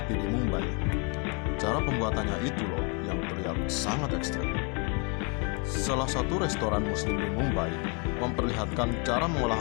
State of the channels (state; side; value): quieter; right; 35.0 dB